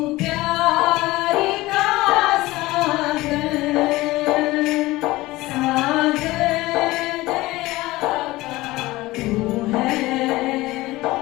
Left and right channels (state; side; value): quieter; right; 19.1 dB